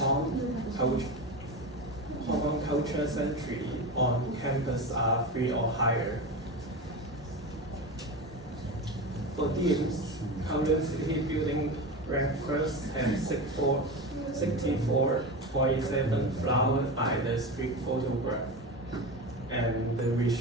culture century on campus are 3 or higher. For teams, Kowloon City Building ranked first and 64.7 flowered by the street photograph. And the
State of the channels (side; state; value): both; normal; correlation 0.23